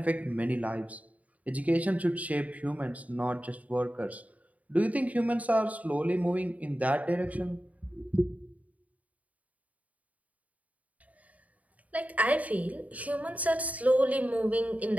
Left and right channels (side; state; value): left; late; 0.071 ms